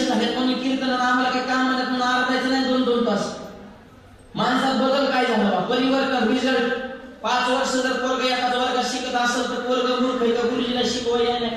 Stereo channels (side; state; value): both; identical; correlation 1.00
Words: झालेत म्हणून कीर्तनाला आम्हाला काही काम म्हणत म्हणून आरडायचं नाही 2-2 तास माणसात बदल काय झाला परिवर्तन रिझल्ट 5 वर्ष जर पोरग एखाद्या वर्गात शिकत असेल तर पोरग मूर्ख आहे का गुरुजीला शिकवायला नाही